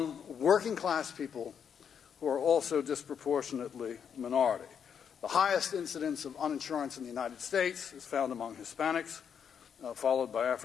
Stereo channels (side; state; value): right; quieter; 7.6 dB